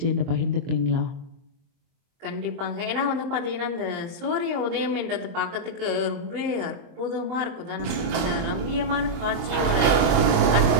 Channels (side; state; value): left; late; 23 ms